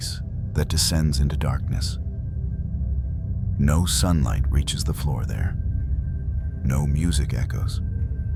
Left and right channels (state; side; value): identical; both; correlation 1.00